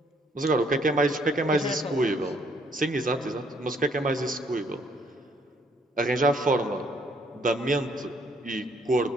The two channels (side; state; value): both; normal; correlation 0.66